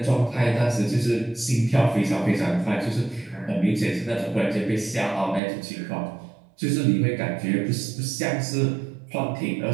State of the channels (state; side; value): drops out; left; at 5.4 s